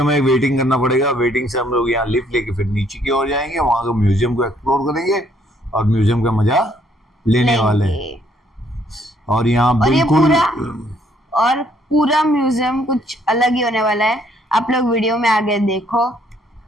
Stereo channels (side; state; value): both; normal; correlation 0.67